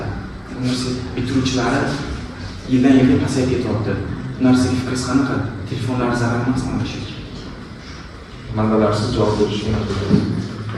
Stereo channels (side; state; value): both; identical; correlation 1.00